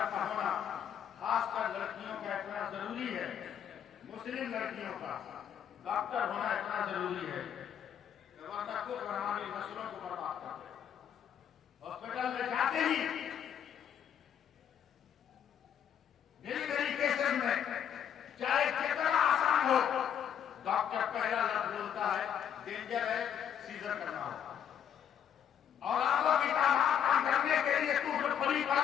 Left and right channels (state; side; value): quieter; right; 8.9 dB